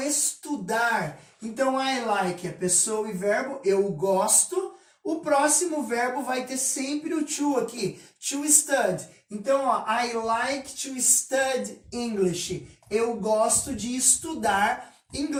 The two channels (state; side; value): identical; both; correlation 1.00